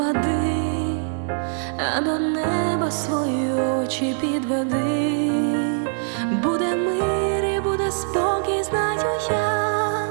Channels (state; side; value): silent; left; digital silence